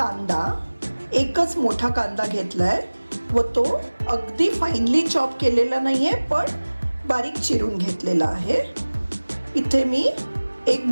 एकच मोठा कांदा घेतला आहे व तो अगदी फाईनली चॉप केलेला नाही आहे, पण बारीक चिरून घेतलेला आहे. इथे मी एक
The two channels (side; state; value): both; inverted; correlation -1.00